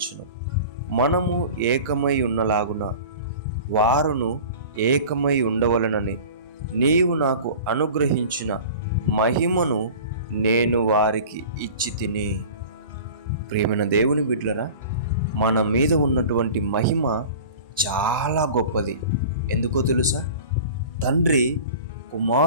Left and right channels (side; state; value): both; inverted; correlation -0.39